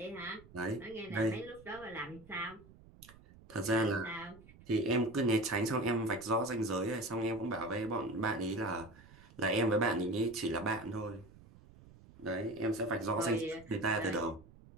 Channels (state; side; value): noise; right; rumble, 22 dB below the sound